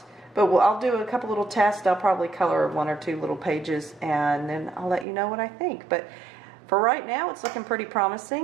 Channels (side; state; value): left; drops out; at 5.1 s